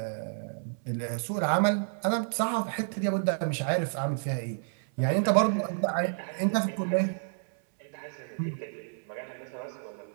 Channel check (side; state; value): left; silent; 58 dB below the other